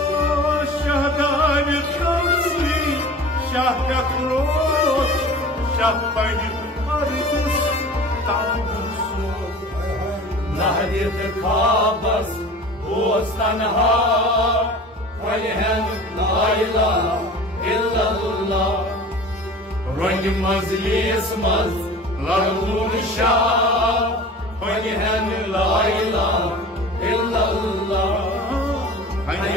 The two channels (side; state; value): both; normal; correlation 0.39